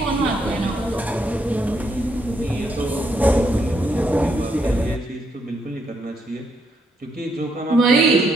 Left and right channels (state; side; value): normal; both; correlation 0.76